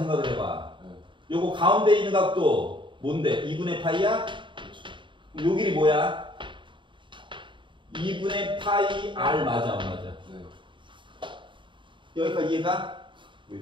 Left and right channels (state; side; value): late; left; 0.24 ms